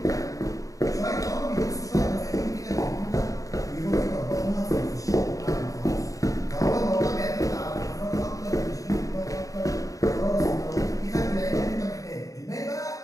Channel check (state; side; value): late; right; 0.16 ms